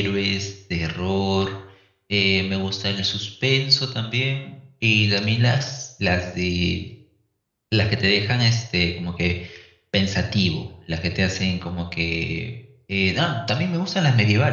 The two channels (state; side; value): identical; both; correlation 1.00